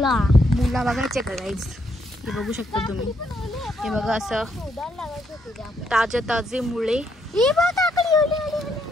बघायचे का गाईज? हे बघू शकता तुम्ही, हे बघा असं ताजे मुळे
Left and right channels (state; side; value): normal; both; correlation 0.75